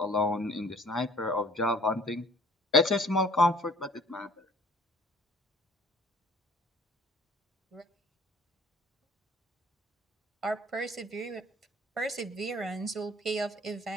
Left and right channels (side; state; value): both; normal; correlation 0.54